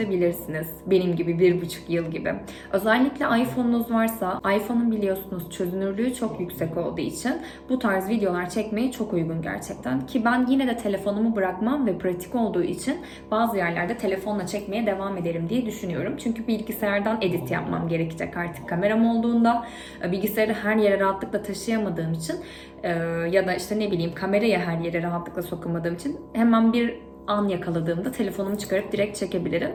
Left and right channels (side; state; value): both; identical; correlation 1.00